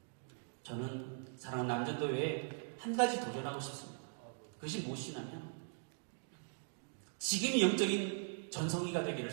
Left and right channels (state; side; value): silent; left; digital silence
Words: 저는 사랑하는 남전도회에 한 가지 도전하고 싶습니다. 그것이 무엇이냐면 지금이 영적인 전성기가